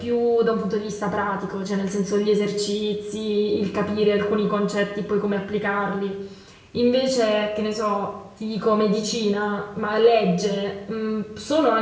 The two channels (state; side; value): identical; both; correlation 1.00